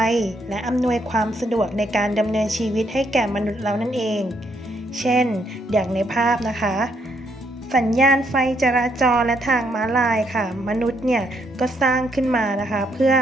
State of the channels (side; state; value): both; normal; correlation 0.74